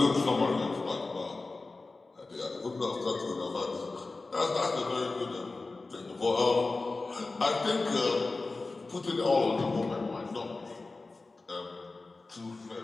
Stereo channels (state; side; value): quieter; right; 3.5 dB